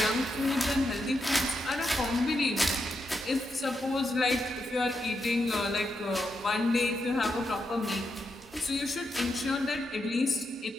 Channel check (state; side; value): normal; both; correlation 0.84